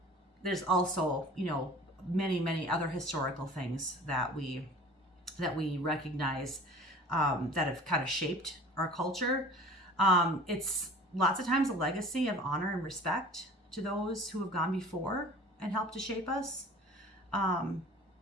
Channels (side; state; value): both; normal; correlation 0.44